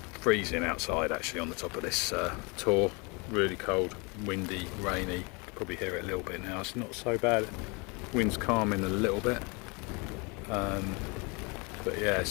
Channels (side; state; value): right; quieter; 30.0 dB